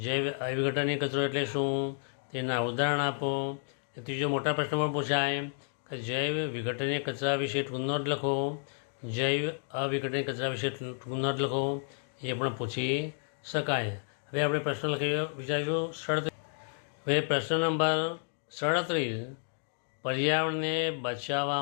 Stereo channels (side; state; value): right; silent; 57 dB below the other